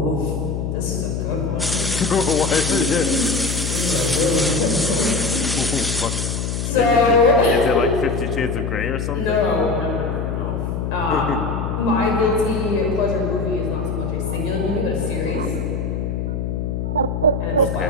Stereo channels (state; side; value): noise; left; hum, 2 dB below the sound